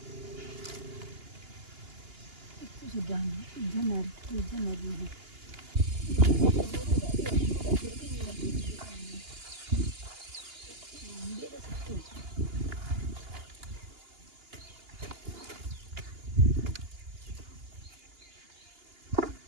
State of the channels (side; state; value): left; late; 2.8 ms